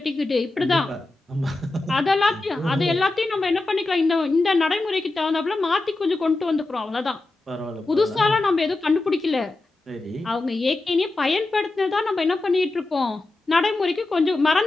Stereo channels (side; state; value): right; quieter; 3.0 dB